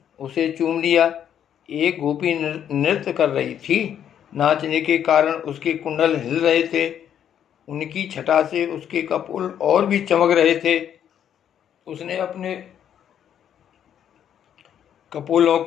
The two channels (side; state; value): right; quieter; 9.5 dB